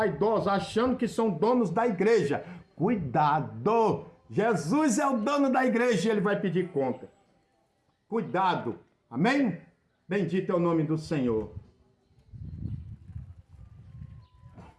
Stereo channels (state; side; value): identical; both; correlation 1.00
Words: achando que são donos da igreja. Cuidado! Jesus é o dono da igreja e ele vai pedir conta. Cuidado. Amém? Bendito é o nome do Senhor.